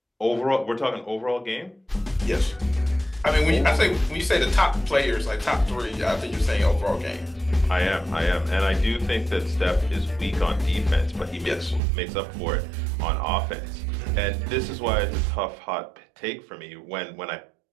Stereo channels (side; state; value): left; drops out; at 11.8 s